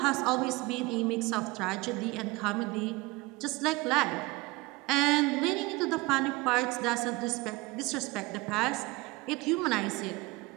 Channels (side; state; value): left; quieter; 22.5 dB